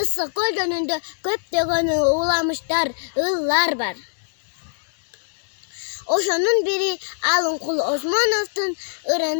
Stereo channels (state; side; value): silent; right; 64 dB below the other